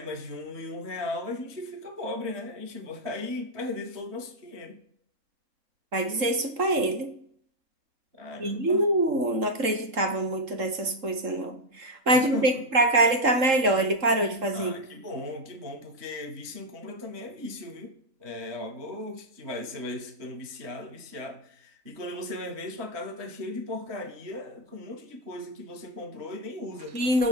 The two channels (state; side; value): late; left; 3.7 ms